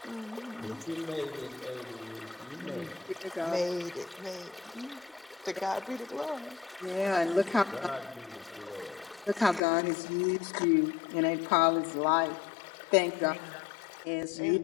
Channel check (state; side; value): drops out; right; at 9.6 s